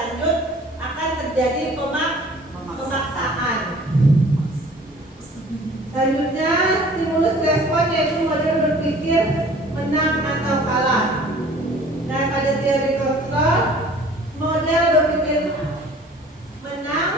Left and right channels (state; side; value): normal; both; correlation 0.50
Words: akan terjadi pemaksaan. Selanjutnya stimulus respon yaitu model berpikir menang atau kalah. Nah, pada teori kontrol, model berpikir menang